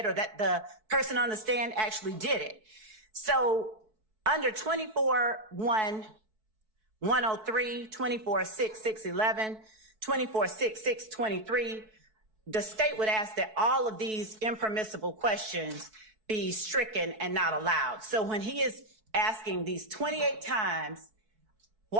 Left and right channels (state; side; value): late; left; 4.6 ms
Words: or that the person on the stand actually did it. So under 24-1-103, 24-6-6-11, 24-6-6-23, the state would ask that all of these impermissible questions be stricken and not allowed. So when he is asking these 28 times,